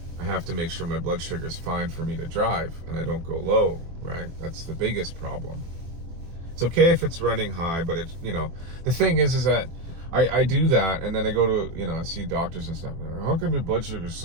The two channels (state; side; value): late; left; 24 ms